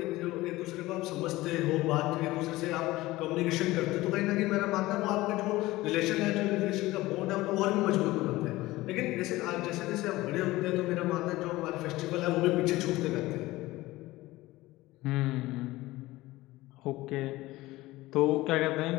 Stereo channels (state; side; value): quieter; right; 18.5 dB